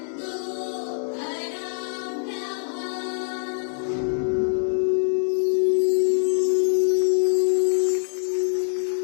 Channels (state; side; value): silent; right; 62 dB below the other